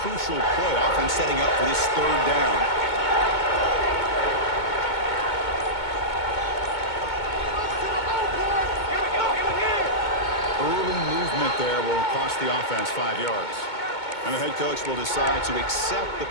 play, often setting up for this third down. Early movement there will cost the offense 5 yards. And the head coach will decide to accept the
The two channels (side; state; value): right; late; 2.2 ms